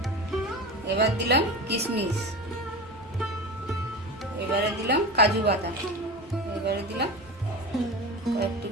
এবার দিলাম কিশমিশ, এবারে দিলাম কাজু বাদাম, এবারে দিলাম কয়েক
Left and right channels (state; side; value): normal; both; correlation 0.28